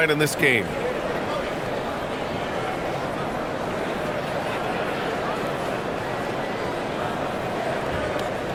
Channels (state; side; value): identical; both; correlation 1.00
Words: in this game.